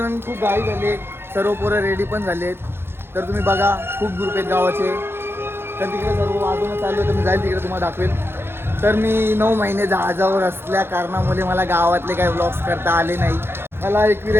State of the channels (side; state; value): left; late; 0.11 ms